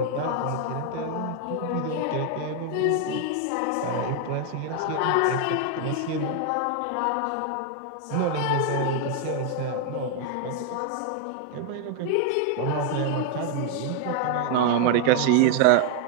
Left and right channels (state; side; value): different; both; correlation 0.00